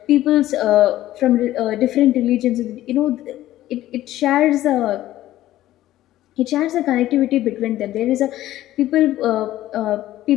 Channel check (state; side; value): quieter; right; 14.4 dB